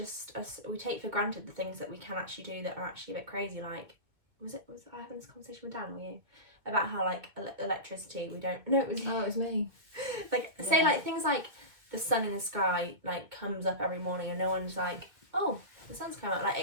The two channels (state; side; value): late; left; 2.2 ms